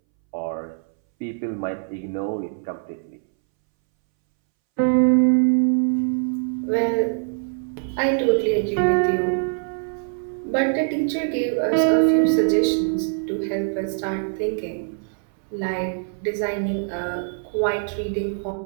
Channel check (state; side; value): silent; left; 63 dB below the other